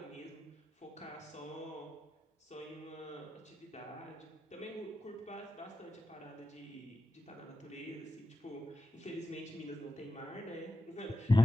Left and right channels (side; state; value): both; normal; correlation 0.90